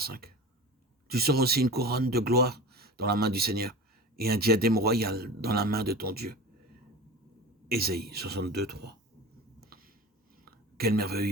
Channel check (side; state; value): both; normal; correlation 0.34